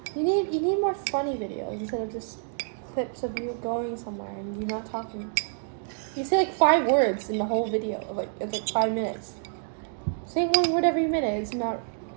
you need more funny videos instead of just clips of you going somewhere and you not talking. You say like 5 words in the whole video. It's like 5 minutes. Saying one word every minute is not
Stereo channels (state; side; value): silent; left; digital silence